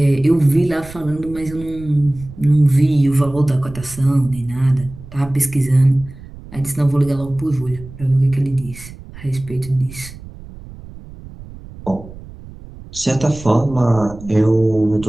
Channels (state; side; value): noise; right; rumble, 16 dB below the sound